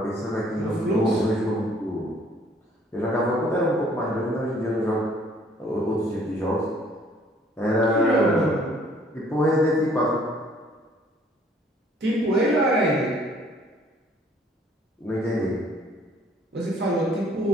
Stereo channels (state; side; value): normal; both; correlation 0.59